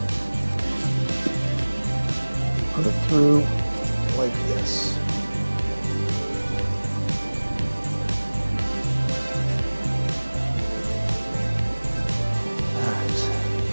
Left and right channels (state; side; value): inverted; both; correlation -1.00